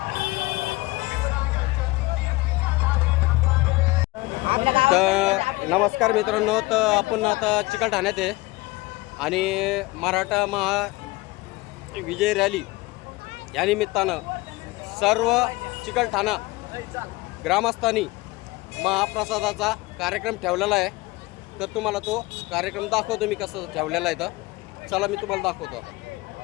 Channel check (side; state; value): right; quieter; 21.7 dB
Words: तर नमस्कार मित्रांनो, तर आपण आता चिकलठाण्यात आहे आणि मराठा महा विजय रॅली या निमित्तानं सर्व चिकलठाणा ग्रामस्थांनी महाप्रसादाचा कार्यक्रम ठेवलेला आहे. तर तुम्हाला तो कार्यक्रम दाखवतो मी कसं ठेवलेला आहे. तर चला मी तुम्हाला दाखवतो आता.